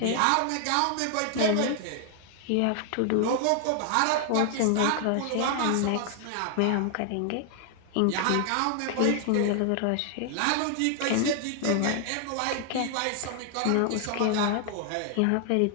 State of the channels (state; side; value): different; both; correlation 0.00